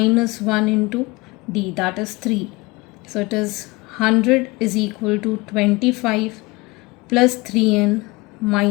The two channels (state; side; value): quieter; right; 23.2 dB